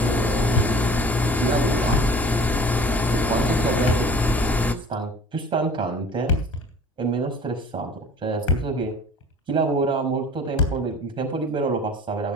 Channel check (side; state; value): both; normal; correlation 0.46